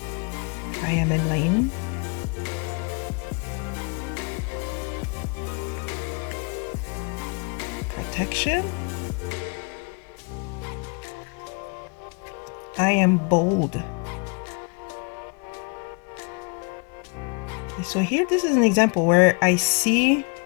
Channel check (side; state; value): right; quieter; 32.4 dB